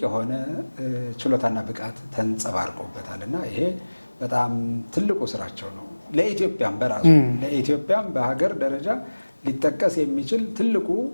የሆነ ችሎታና ብቃት ተንጸባርቆበታል እና ይሄ በጣም ትልቁ ስራቸው ነው። ለኢትዮጵያም በራሱ ለኢትዮጵያም በሀገር ደረጃ ሊጠቀስ የሚችል ትልቁ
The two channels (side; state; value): both; inverted; correlation -1.00